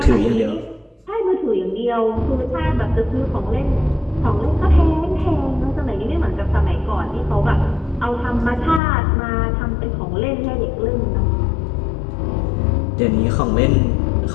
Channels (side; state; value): right; drops out; at 8.8 s